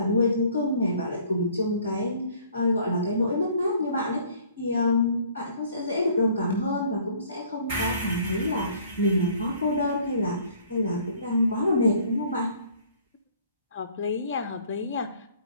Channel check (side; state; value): both; inverted; correlation -0.56